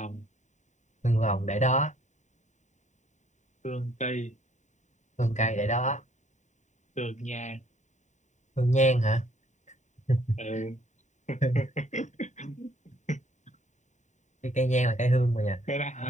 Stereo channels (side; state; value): right; late; 0.34 ms